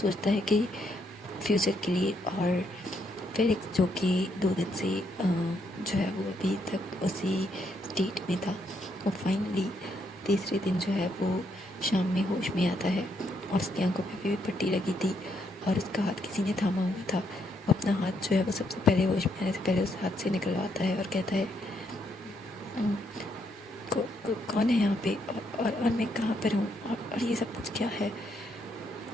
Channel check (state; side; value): normal; both; correlation 0.75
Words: है कि फ्यूचर के लिए। और फेलिक्स जो कि 2 दिन से जो है वो अभी तक उसी स्टेट में था, वो फाइनली तीसरे दिन जो है वो शाम में होश में आता है और उसकी आंखों पे भी पट्टी लगी थी और उसका हाथ किसी ने थामा हुआ था। वो अपना हाथ जो है वो सबसे पहले होश में आने से पहले उस हाथ से निकलवाता है और कहता है कौन है यहाँ पे और मैं कहाँ पर हूँ और ये सब कुछ क्या है।